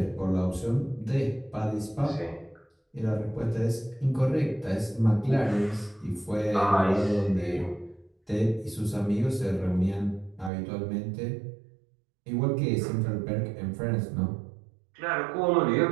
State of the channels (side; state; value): left; drops out; at 10.5 s